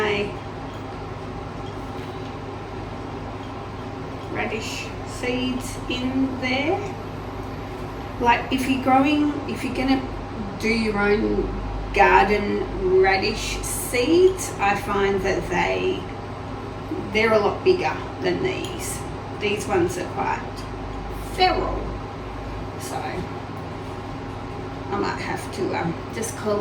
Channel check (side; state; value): both; identical; correlation 1.00